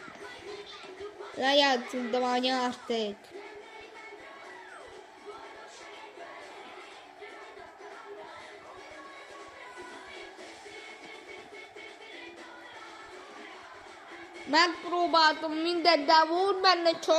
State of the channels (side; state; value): both; identical; correlation 1.00